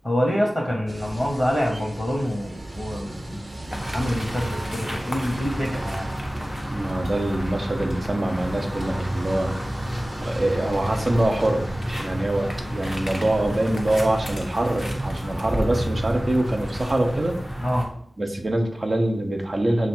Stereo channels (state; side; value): normal; both; correlation 0.97